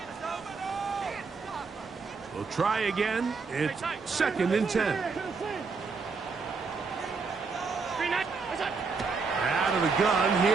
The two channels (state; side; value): quieter; left; 4.7 dB